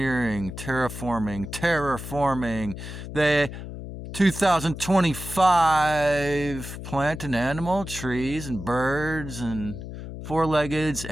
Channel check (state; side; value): noise; left; hum, 10 dB below the sound